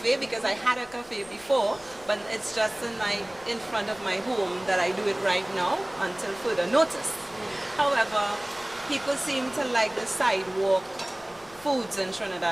because I had a cafe before, but it's just in front of my home that I do it right now until further notice. However, people seem to like the sidewalk foods in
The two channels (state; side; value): noise; left; rumble, 26 dB below the sound